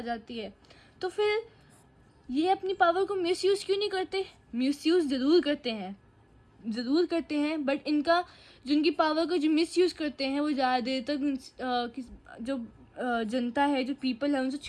जाती है, तो फिर ये अपनी पावर को मिसयूज़ क्यों नहीं करते? मिसयूज़ ज़रूर करते हैं, बट जिनकी पावर को जो मिसयूज़ करते हैं वो ज़्यादा देर तक जो जनता है, जो पीपल है, उनसे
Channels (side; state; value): both; identical; correlation 1.00